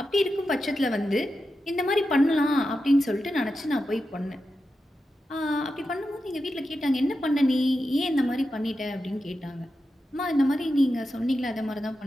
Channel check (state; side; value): normal; both; correlation 0.90